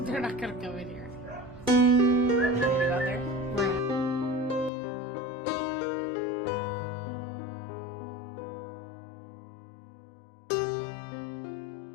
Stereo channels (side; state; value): right; drops out; at 4.7 s